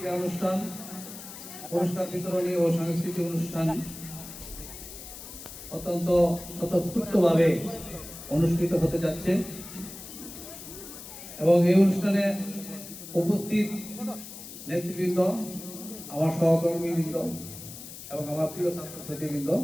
অনুষ্ঠান, পুরস্কার বিতরণী ও সাংস্কৃতিক অনুষ্ঠান অত্যন্ত স্বতঃস্ফূর্তভাবে অনুষ্ঠিত হতে যাচ্ছে এবং এই অনুষ্ঠানে উপস্থিত নেতৃবৃন্দ, আমার সহকর্মীবৃন্দ এবং আমার প্রিয় ছাত্রছাত্রীবৃন্দ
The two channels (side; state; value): left; noise; hiss, 13 dB below the sound